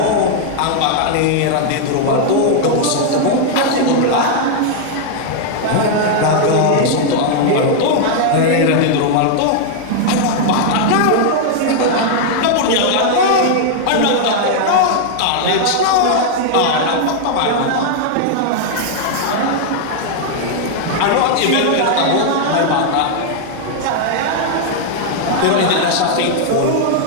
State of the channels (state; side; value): different; both; correlation 0.00